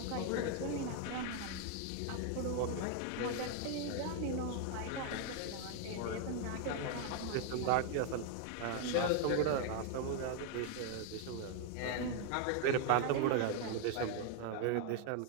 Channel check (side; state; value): both; different; correlation 0.00